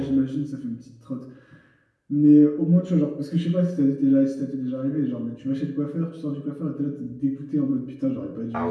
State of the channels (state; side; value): identical; both; correlation 1.00